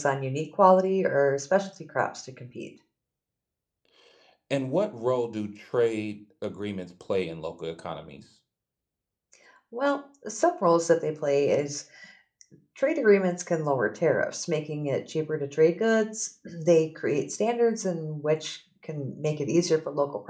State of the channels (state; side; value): identical; both; correlation 1.00